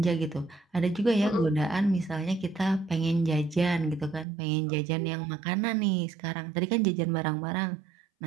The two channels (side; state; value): left; drops out; at 4.2 s